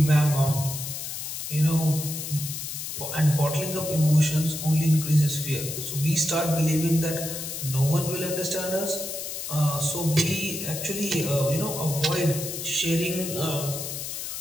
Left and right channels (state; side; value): noise; left; hiss, 6 dB below the sound